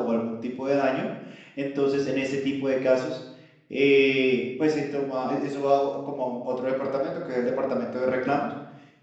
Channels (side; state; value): both; identical; correlation 1.00